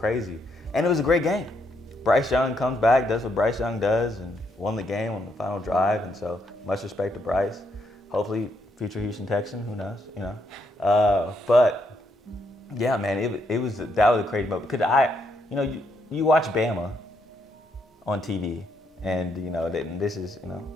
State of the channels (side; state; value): both; normal; correlation 0.76